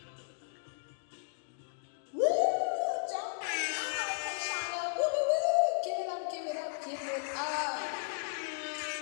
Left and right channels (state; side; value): silent; right; digital silence